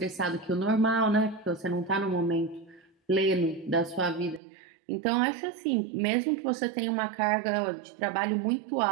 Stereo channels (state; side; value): drops out; left; at 4.4 s